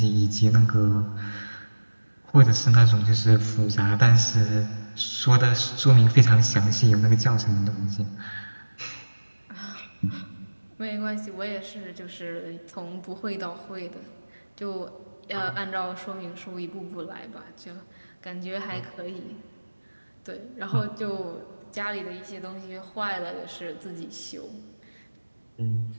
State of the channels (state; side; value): inverted; both; correlation -1.00